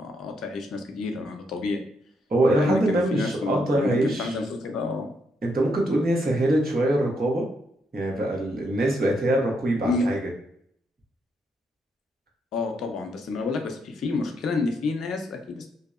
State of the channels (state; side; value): normal; both; correlation 0.78